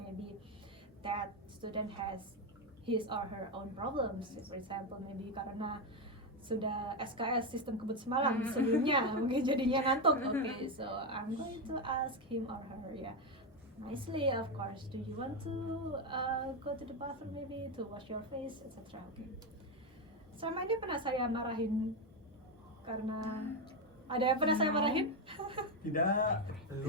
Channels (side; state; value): both; normal; correlation 0.08